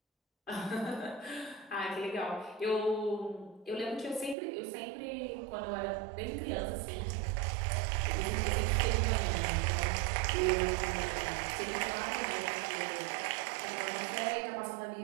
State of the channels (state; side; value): drops out; left; at 4.4 s